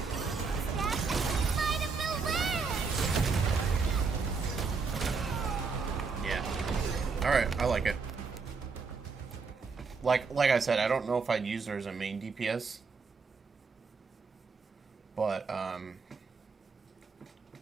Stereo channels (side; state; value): left; quieter; 4.9 dB